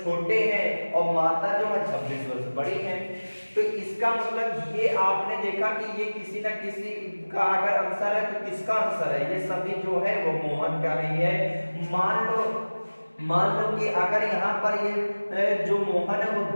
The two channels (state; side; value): inverted; both; correlation -1.00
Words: छोटे हैं और माता जो है 26 वर्ष बड़ी है। तो इसका मतलब ये आपने देखा कि ये किसी न किसी का अगर आंसर है तो किसका आंसर है, ये सभी जो है वो मोहन का नहीं है। मान लो कि अगर यहाँ पर ये जो मोहन है वो